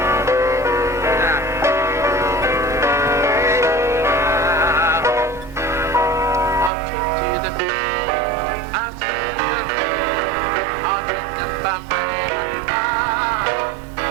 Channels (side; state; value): left; drops out; at 6.7 s